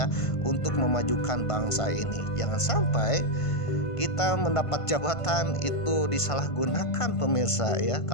untuk memajukan bangsa ini. Jangan sampai kita mendapat jabatan itu disalahgunakan pemirsa ya.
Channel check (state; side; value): late; right; 1.5 ms